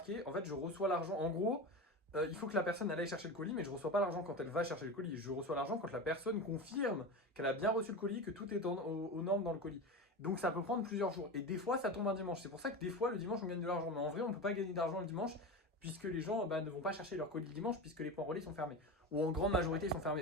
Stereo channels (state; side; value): normal; both; correlation 0.25